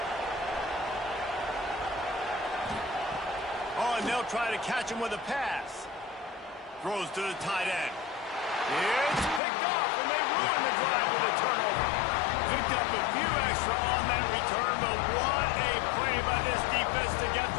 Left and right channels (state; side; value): drops out; right; at 9.4 s